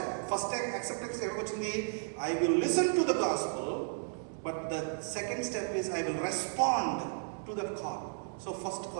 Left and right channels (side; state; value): left; silent; digital silence